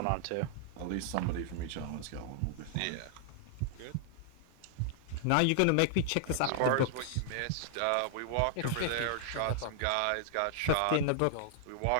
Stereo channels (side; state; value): both; different; correlation 0.00